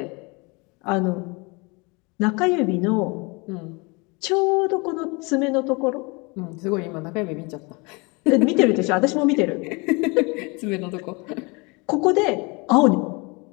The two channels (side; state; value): right; quieter; 28.2 dB